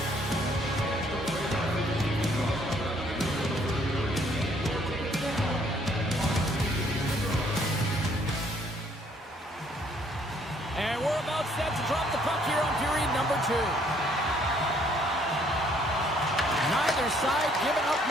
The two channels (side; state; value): both; normal; correlation 0.65